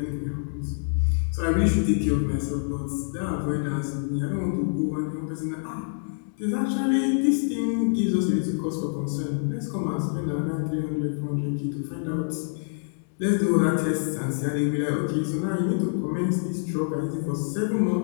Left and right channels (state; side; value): silent; right; digital silence